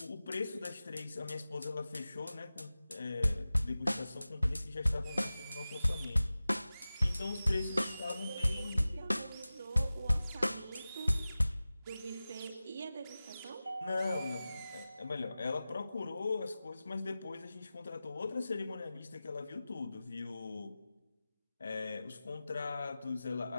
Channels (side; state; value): both; inverted; correlation -0.96